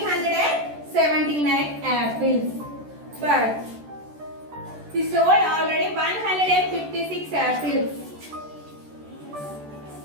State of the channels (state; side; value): late; left; 14 ms